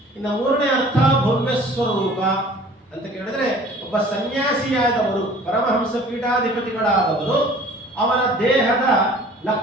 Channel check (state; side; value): normal; both; correlation 0.49